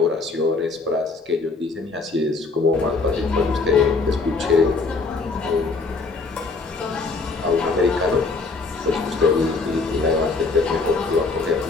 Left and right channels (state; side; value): quieter; right; 3.9 dB